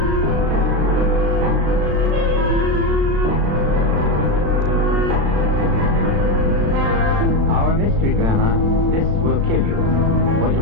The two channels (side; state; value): left; late; 36 ms